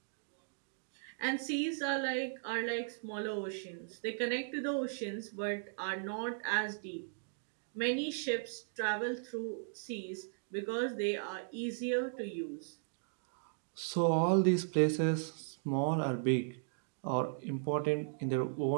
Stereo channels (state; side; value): silent; left; digital silence